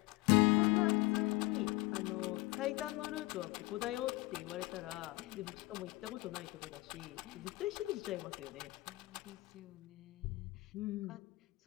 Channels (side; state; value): right; quieter; 22.0 dB